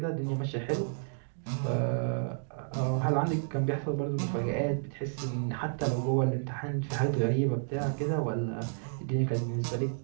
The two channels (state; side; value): silent; left; digital silence